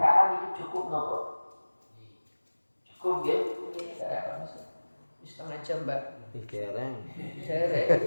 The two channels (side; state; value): both; inverted; correlation -1.00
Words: itu cukup nopo? Cukup ya? Setengah jam mbak. Dereng. Dereng.